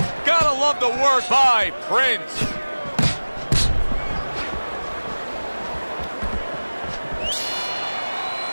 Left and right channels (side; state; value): both; inverted; correlation -1.00